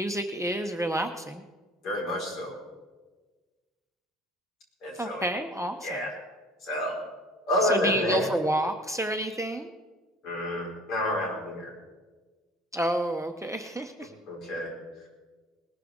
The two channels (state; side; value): normal; both; correlation 0.48